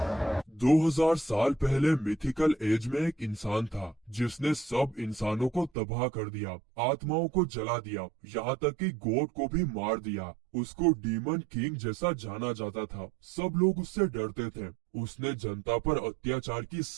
2000 साल पहले mythical as में एक इंसान था जिसने सब इंसानों को तबाह कर दिया, आत्माओं को जला दिया, यहाँ तक कि गॉड को भी मार दिया। उसको डीमन किंग जैसा जाना जाता था। सब लोग उससे डरते थे। उसने जनता पर अत्याचार की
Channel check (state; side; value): drops out; left; at 5.7 s